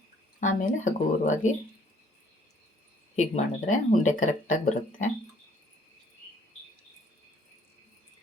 ಆಮೇಲೆ ಹಗುರವಾಗಿ ಹೀಗೆ ಮಾಡಿದ್ರೆ ಉಂಡೆ ಕರೆಕ್ಟಾಗಿ ಬರುತ್ತೆ.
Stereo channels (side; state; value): both; normal; correlation 0.61